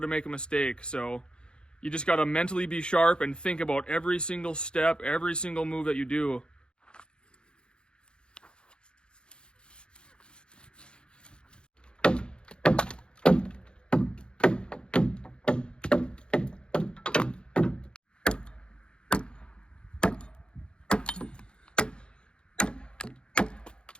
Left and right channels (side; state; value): right; late; 0.052 ms